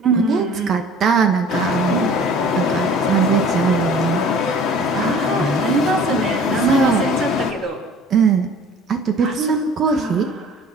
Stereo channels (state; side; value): normal; both; correlation 0.47